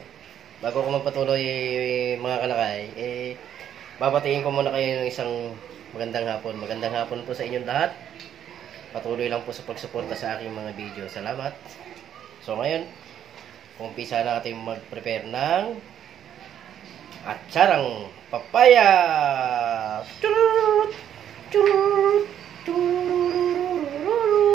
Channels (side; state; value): left; quieter; 9.9 dB